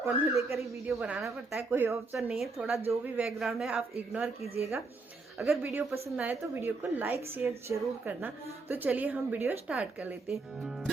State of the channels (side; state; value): left; quieter; 3.7 dB